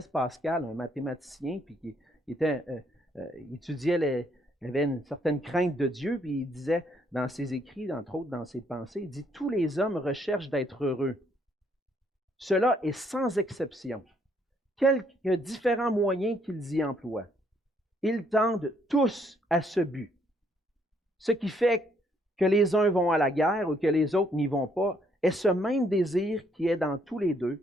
Pascal, un mathématicien, puis qui étudiait, il avait une certaine crainte de Dieu, puis il disait dans ses écrits, entre autres dans ses pensées, il dit « Tous les hommes recherchent d'être heureux. Cela est sans exception. Quelques différents moyens qu'ils y emploient. Ils tendent tous à ce but. Ce qui fait que les uns vont à la guerre ou que les autres n'y vont pas, est ce même désir qui est dans tous les deux,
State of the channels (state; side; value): normal; both; correlation 0.69